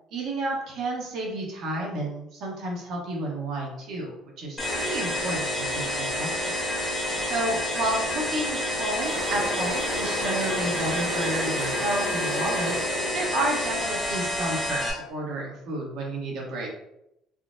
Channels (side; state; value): both; normal; correlation 0.56